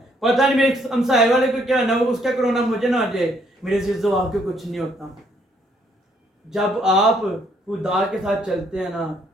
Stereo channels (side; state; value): both; normal; correlation 0.69